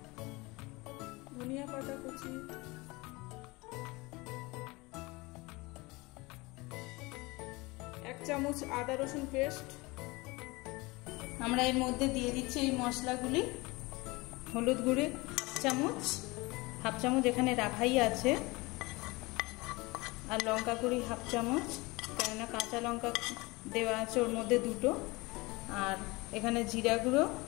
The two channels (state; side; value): quieter; right; 23.6 dB